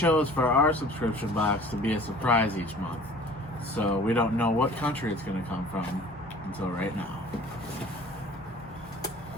for our subscription box to be a surprise each month, so we don't know what country it's going to come from until right now.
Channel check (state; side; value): normal; both; correlation 0.47